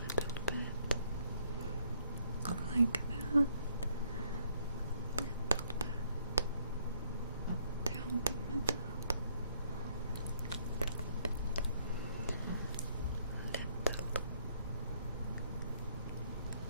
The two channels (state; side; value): inverted; both; correlation -0.68